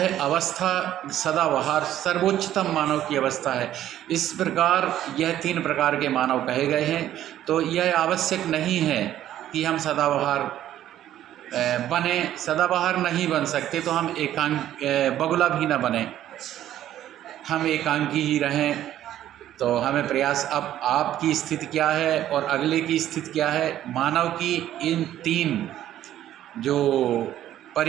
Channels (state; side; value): quieter; left; 12.2 dB